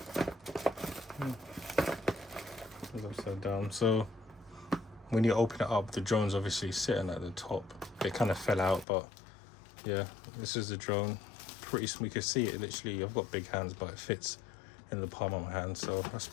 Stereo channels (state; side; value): drops out; right; at 8.8 s